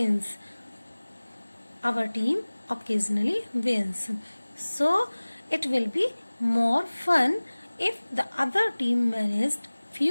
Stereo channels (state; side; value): inverted; both; correlation -1.00